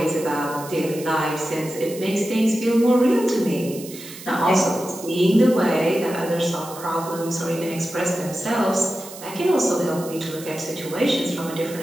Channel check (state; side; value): noise; right; hiss, 15 dB below the sound